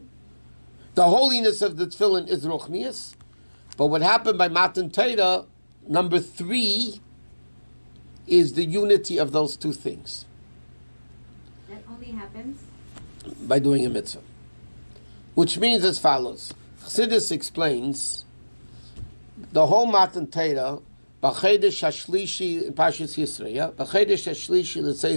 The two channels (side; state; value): both; inverted; correlation -1.00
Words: The holiness of the tefillin is Ruchnius. But what happened by Matan Torah, number 3, is the unity of those two things. That only happens by doing a mitzvah. Which means as follows. Chassidus explains the whole Matan Torah, B'chedesh HaShlishi in Parshas Yisro, yeah? B'chedesh HaShlishi